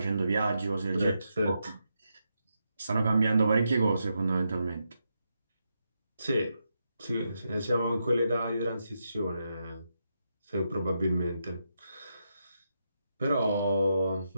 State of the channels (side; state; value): both; inverted; correlation -0.84